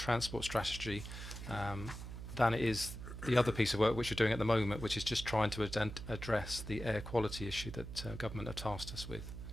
strategy than it is the other piece of work which we're doing at the moment, which is just trying to address the air quality issue that government have tasked us with.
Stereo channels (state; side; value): noise; right; hum, 9 dB below the sound